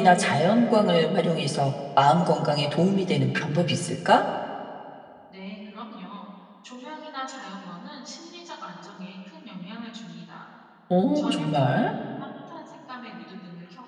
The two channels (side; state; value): both; identical; correlation 1.00